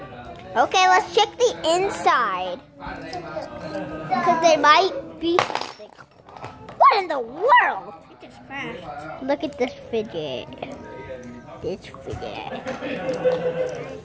Okay, let's check the inside. Because there might be something. What in the world? It just crashed. Look at this fidget. This fidget.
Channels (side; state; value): both; identical; correlation 1.00